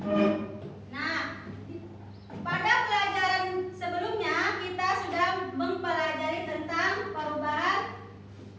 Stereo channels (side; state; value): both; identical; correlation 1.00